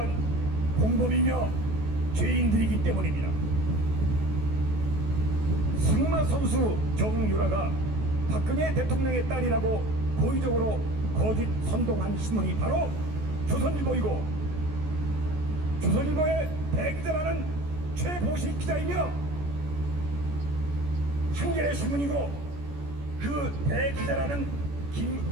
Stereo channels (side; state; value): left; late; 14 ms